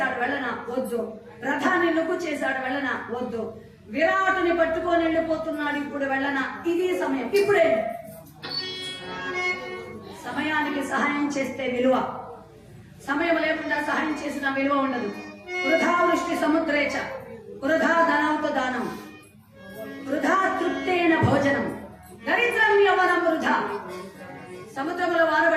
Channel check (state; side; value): identical; both; correlation 1.00